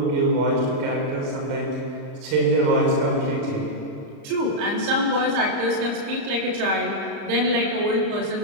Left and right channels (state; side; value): late; left; 35 ms